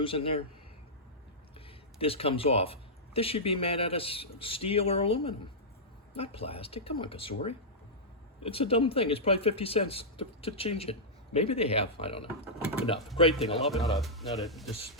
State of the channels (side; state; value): both; normal; correlation -0.11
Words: in there? This comes off. This should be made out of steel or aluminum, not plastic. Come on, Cosori. It's a dumb thing. It's probably 50 cents to change it. Maybe they have. I don't know. Enough. Great thing. I love it. Not a